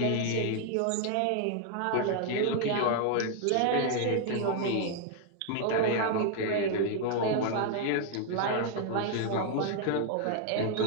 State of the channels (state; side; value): different; both; correlation 0.00